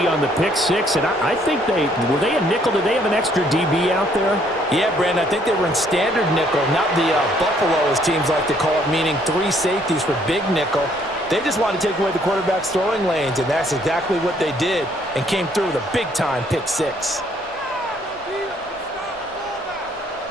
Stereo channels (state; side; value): noise; left; rumble, 27 dB below the sound